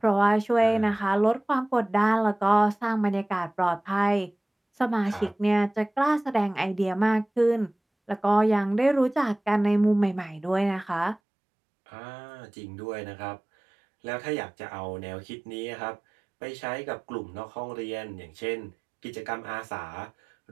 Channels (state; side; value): drops out; left; at 11.2 s